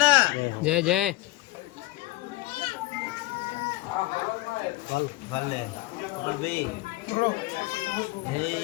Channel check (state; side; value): quieter; right; 19.7 dB